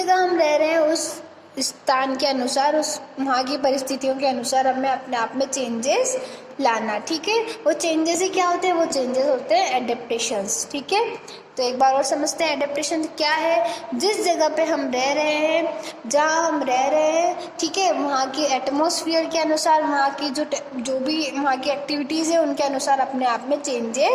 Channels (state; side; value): identical; both; correlation 1.00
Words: हम रह रहे हैं उस स्थान के अनुसार, उस वहाँ की परिस्थितियों के अनुसार हमें अपने आप में चेंजेस लाना. ठीक है, वो चेंजेस ही क्या होते हैं, वो चेंजेस होते हैं एडेप्टेशंस. ठीक है, तो एक बार और समझते हैं एडेप्टेशन क्या है. जिस जगह पे हम रह रहे हैं, जहाँ हम रह रहे हैं, ठीक है, वहाँ की एटमॉस्फेयर के अनुसार, वहाँ की जो भी वहाँ की एक्टिविटीज़ है उनके अनुसार अपने आप में